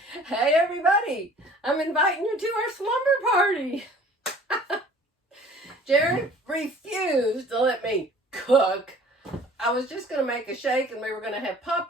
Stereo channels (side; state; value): both; normal; correlation 0.50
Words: Hey everybody, I'm inviting you to our slumber party. Jerry refused to let me cook. I was just going to make a shake and we were going to have